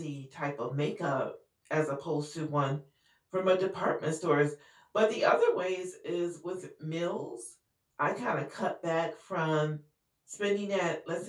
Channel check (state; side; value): identical; both; correlation 1.00